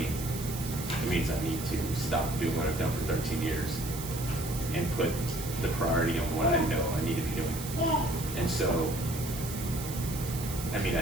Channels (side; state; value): right; noise; hiss, 9 dB below the sound